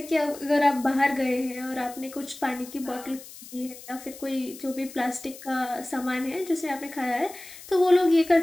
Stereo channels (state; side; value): noise; left; hiss, 16 dB below the sound